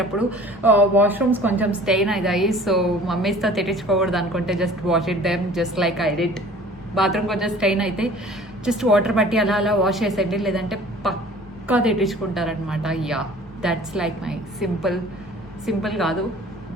వాష్రూమ్స్ కొంచెం స్టెయిన్ అవుతాయి. సో మమ్మీస్తో తిట్టించుకోకూడదు అనుకుంటే just wash it them just like I did. Bathroom కొంచెం స్టెయిన్ అయితే జస్ట్ వాటర్ పట్టి అలా వాష్ చేసేయండి, లేదంటే పక్కా తిట్టించుకుంటారనమాట. Yeah, that's like my simple కాదు,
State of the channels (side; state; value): both; normal; correlation 0.47